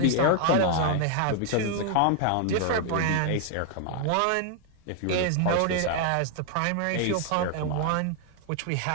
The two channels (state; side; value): different; both; correlation 0.00